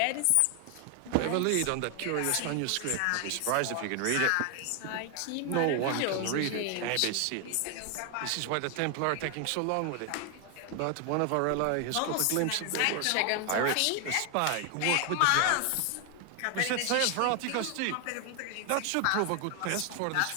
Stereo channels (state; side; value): different; both; correlation 0.00